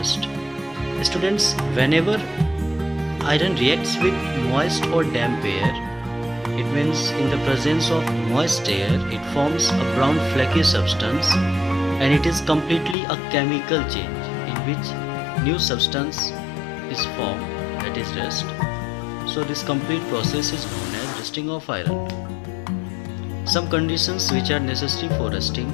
Students, whenever iron reacts with moist or damp air, it means in the presence of moist air, it forms a brown flaky substance, and it is completely a chemical change in which new substance is formed, that is rust. So this complete process is known as rusting of iron. Some conditions which are necessary for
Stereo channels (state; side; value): drops out; right; at 13.0 s